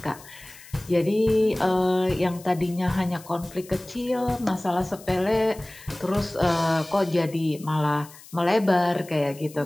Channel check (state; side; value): noise; left; hiss, 20 dB below the sound